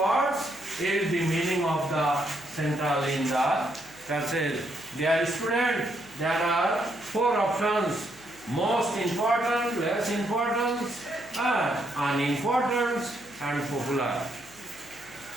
is the meaning of the central in the passage? Dear student, there are 4 options: most important, less important, unimportant, and popular.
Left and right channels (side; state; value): left; noise; hum, 25 dB below the sound